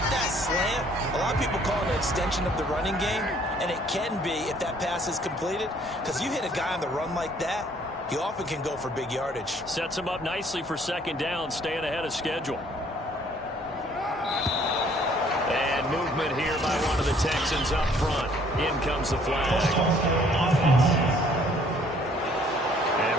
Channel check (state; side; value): normal; both; correlation 0.60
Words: that slant. A lot of people call it an extension of the running game, and it can be if that pass is completed, because you hit a guy on the run like that, he often can go for big yardage. Sets him up nicely for 2nd down, staying ahead of schedule. And movement here by one of the Texans up front. In comes the flag. And